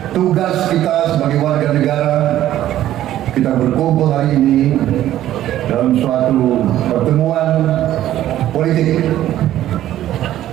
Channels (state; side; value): quieter; left; 12.9 dB